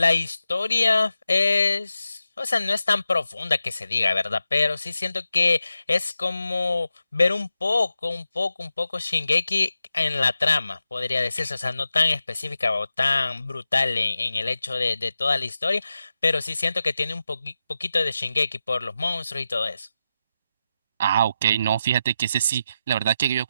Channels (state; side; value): inverted; both; correlation -0.90